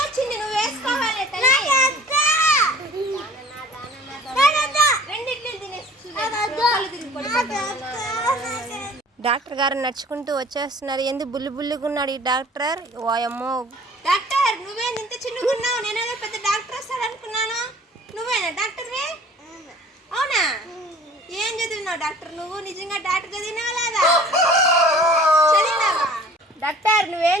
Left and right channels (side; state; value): both; normal; correlation 0.49